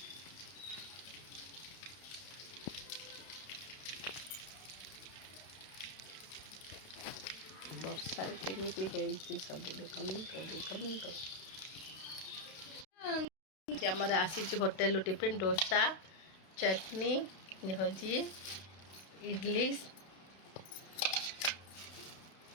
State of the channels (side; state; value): right; late; 32 ms